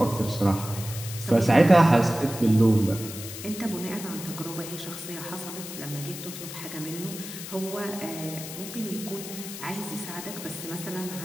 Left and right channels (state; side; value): noise; left; hiss, 10 dB below the sound